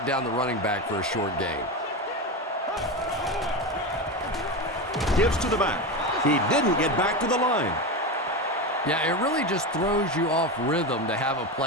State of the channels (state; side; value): normal; both; correlation 0.18